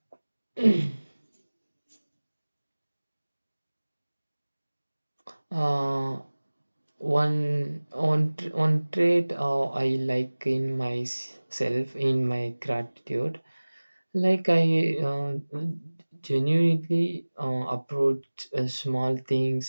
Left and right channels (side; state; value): both; inverted; correlation -1.00